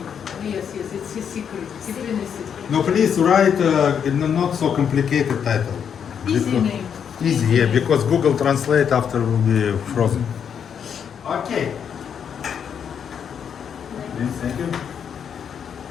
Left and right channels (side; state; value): right; quieter; 7.8 dB